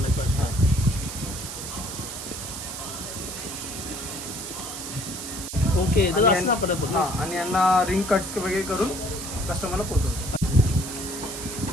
ओके तर असं साफ करायचं पूर्ण. हां, आणि यांना रिंग कट्स वगैरे करून कस्टमरला पोहोचवतो.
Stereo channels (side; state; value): right; noise; hiss, 8 dB below the sound